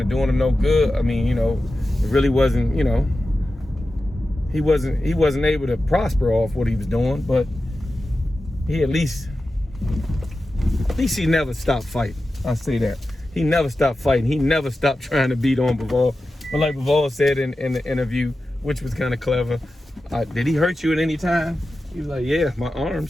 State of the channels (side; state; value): both; normal; correlation 0.93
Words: of doing him no good. I mean, you know, it really wasn't, you know, he wasn't able to prosper off what he was doing, but he at least he never stopped fighting. I'll say that. He never stopped fighting. He never stopped trying to beat on Bivol. But like Bivol said in the interview, which was kind of clever, did he hurt you at any time? He was like, yeah, my